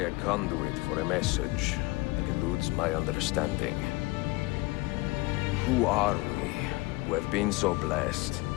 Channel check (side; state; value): right; quieter; 22.8 dB